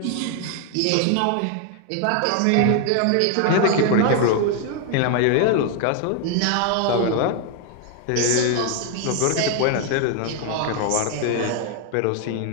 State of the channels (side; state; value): both; different; correlation 0.01